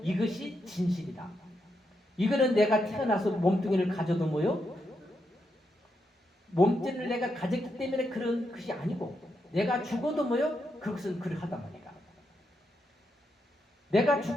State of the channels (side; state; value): both; normal; correlation 0.82